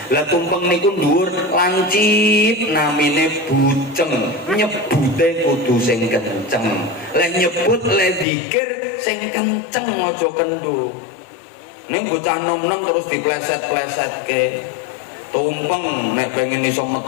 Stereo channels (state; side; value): drops out; right; at 8.2 s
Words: Lah tumpeng niku dhuwur lancip namine buceng, nyebute kudu sing kenceng. Lah nyebut le zikir sing kenceng aja kendo. Ning bocah nom-nom terus dipleset-pleset ke tumpeng nek pengen iso